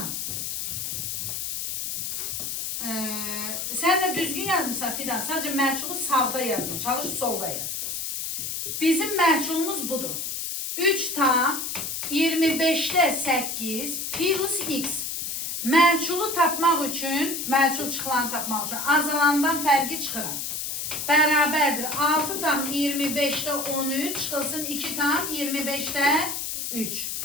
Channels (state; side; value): noise; left; hiss, 4 dB below the sound